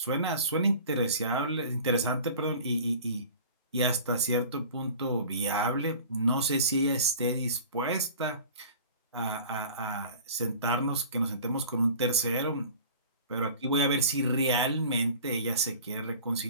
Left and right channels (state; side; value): inverted; both; correlation -0.42